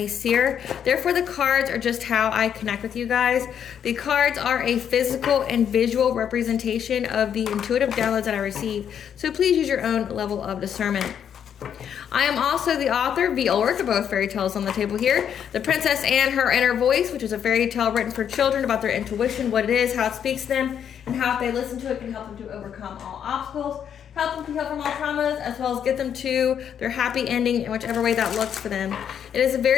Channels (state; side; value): quieter; right; 8.6 dB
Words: seer. Therefore, the cards are just how I connect with you guys. The cards are a physical and visual representation of the intuitive downloads that I receive. So please use your own level of discernment. I am also the author of the work of both fairy tales on the table here. The Princess and Her Inner Voice, which is a fairy tale written for children about their intuition, what it is, how it speaks to them, and how if they listen to it can help them to overcome all obstacles, help them to heal from all traumas, as well as get them to their happy ending in whichever way that looks for them. It is a